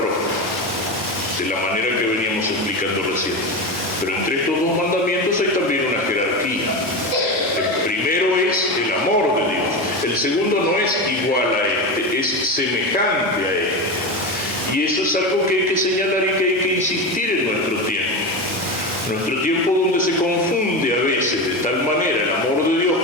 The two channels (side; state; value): both; normal; correlation 0.20